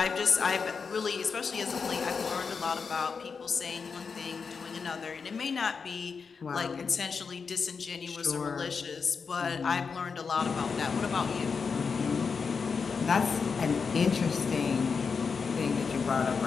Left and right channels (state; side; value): quieter; right; 5.4 dB